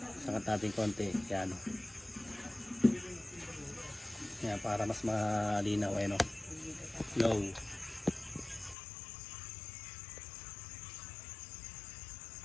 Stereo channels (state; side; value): drops out; right; at 8.8 s